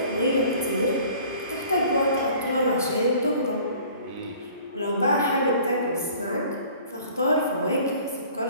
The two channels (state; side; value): inverted; both; correlation -0.50